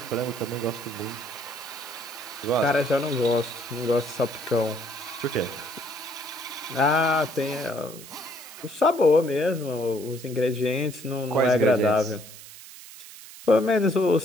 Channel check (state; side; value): noise; right; hiss, 16 dB below the sound